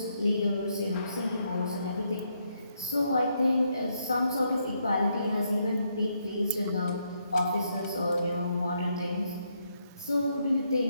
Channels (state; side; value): inverted; both; correlation -0.77